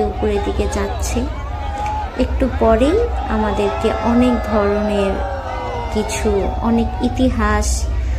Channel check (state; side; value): identical; both; correlation 1.00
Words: উপরের দিকে যাচ্ছে। একটু পরেই আমাদেরকে অনেক ধরনের কিছু, অনেক ইতিহাস